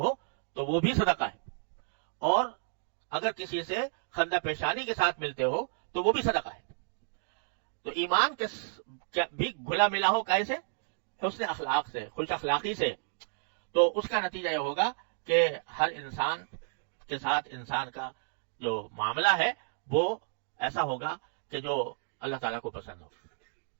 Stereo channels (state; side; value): silent; left; digital silence